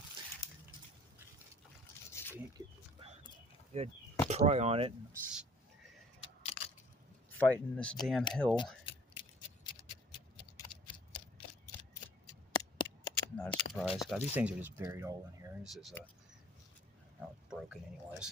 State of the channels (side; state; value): both; normal; correlation 0.54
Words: Can't get good pry on it. Fighting this damn hill. Not a surprise. God, these things are just buried all in here. This is oh, it's broken